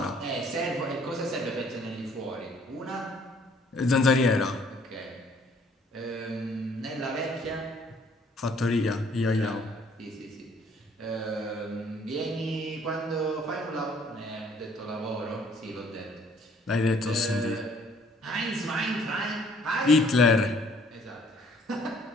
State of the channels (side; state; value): both; normal; correlation 0.60